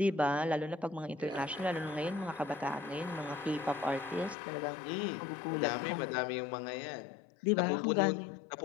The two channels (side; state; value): right; drops out; at 4.4 s